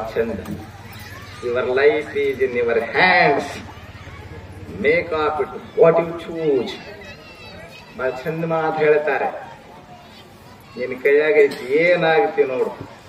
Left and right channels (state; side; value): identical; both; correlation 1.00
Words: ಚಂದ. Your life is in your hands, make of it what you choose. ಬಹಳ ಚಂದ ಮಾತು ಹೇಳ್ತಾರೆ. ನಿನ್ ಕೈಯಾಗೈತಿ, ಏನಾಗ್ತಿ ನೋಡು.